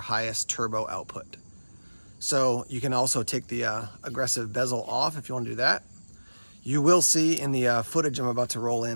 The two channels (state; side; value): inverted; both; correlation -1.00